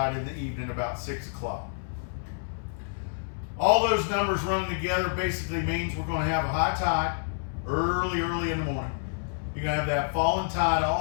in the evening about 6 o'clock. All those numbers running together basically means we're going to have a high tide early in the morning. You're going to have that falling tide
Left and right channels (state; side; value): silent; right; 59 dB below the other